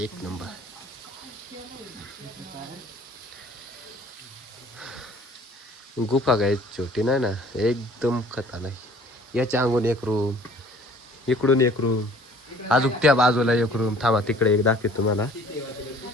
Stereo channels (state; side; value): normal; both; correlation 0.52